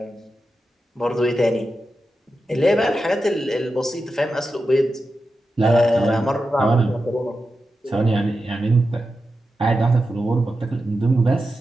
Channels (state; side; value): normal; both; correlation 0.90